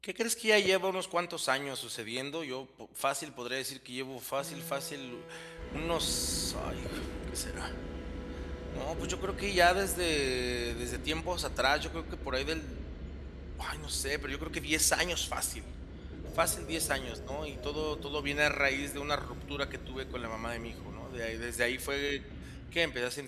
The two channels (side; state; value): both; identical; correlation 1.00